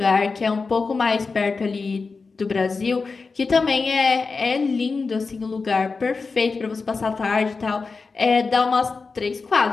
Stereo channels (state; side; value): quieter; right; 4.4 dB